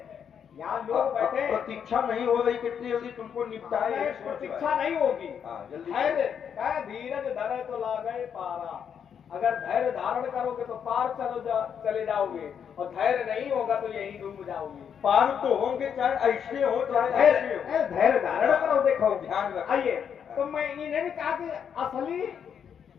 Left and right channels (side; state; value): right; quieter; 7.8 dB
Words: यहाँ लोग बैठे, प्रतीक्षा नहीं हो रही, कितनी जल्दी तुमको निपटाए। प्रतीक्षा नहीं होगी। जल्दी धैर्य धीरज धरे तो लागे पारा। अगर धैर्य धारण करोगे तो पार चले जाओगे, और धैर्य नहीं होगा तो यही डूब जाओगे। पार तो होंगे, चाहे ऐसे हो चाहे ऐसे हो। धैर्य धारण करो। देखो ध्यान रखो। आइए, तो मैं इन्हें भी कहा कि असली